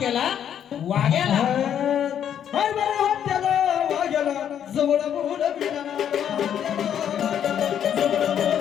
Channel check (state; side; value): quieter; right; 9.3 dB